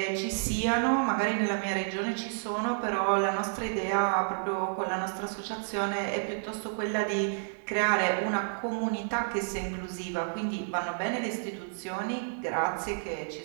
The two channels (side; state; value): left; silent; digital silence